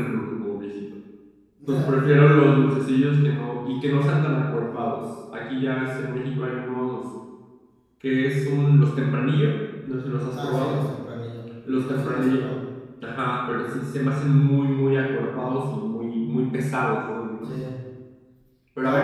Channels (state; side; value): identical; both; correlation 1.00